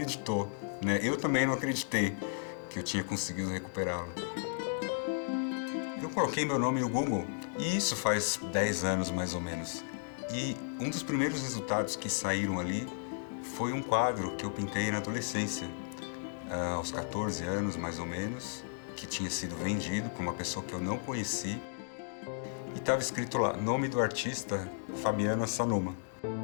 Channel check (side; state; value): right; silent; digital silence